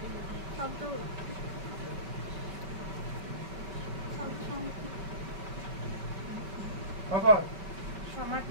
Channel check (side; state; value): left; late; 5.2 ms